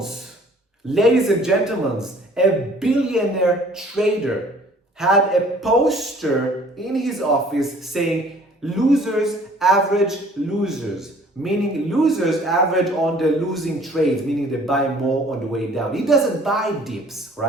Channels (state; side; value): normal; both; correlation 0.54